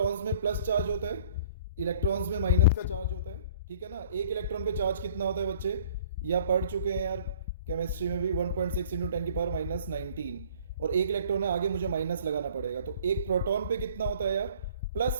में प्लस चार्ज होता है, इलेक्ट्रॉन्स में माइनस का चार्ज होता है, ठीक है ना। एक इलेक्ट्रॉन पे चार्ज कितना होता है बच्चे, या पढ़ चुके हैं यार केमिस्ट्री में भी, 1.6 इंटू 10⁻19। और एक इलेक्ट्रॉन है, आगे मुझे माइनस लगाना पड़ेगा। तो एक प्रोटॉन पे कितना होता है यार,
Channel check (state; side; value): inverted; both; correlation -0.53